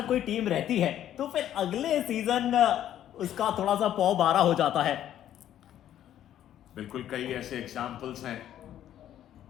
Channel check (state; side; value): quieter; right; 11.4 dB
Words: कोई टीम रहती है तो फिर अगले सीजन उसका थोड़ा सा पौ बारा हो जाता है। बिल्कुल, कई ऐसे एग्जाम्पल्स हैं।